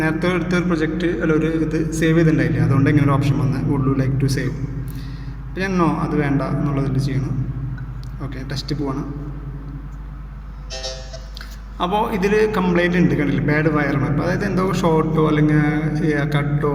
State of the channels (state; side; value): identical; both; correlation 1.00